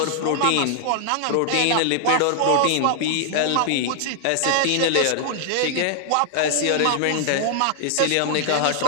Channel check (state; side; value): different; both; correlation -0.01